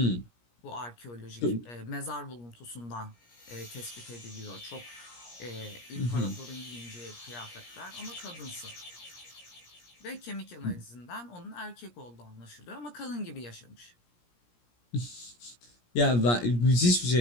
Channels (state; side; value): late; right; 17 ms